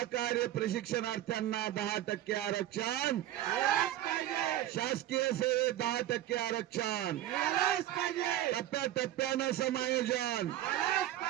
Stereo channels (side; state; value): left; quieter; 13.3 dB